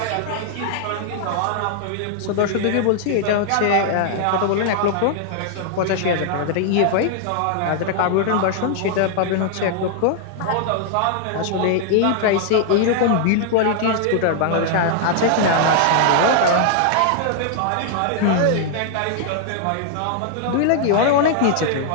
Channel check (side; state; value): both; different; correlation 0.00